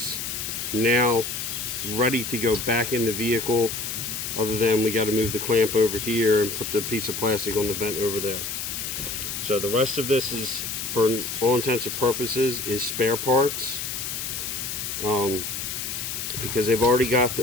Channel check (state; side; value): noise; left; hiss, 4 dB below the sound